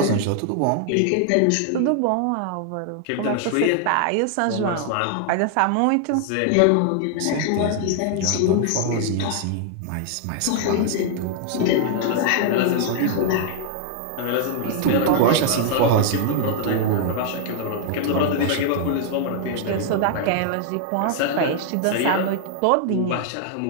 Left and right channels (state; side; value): different; both; correlation 0.00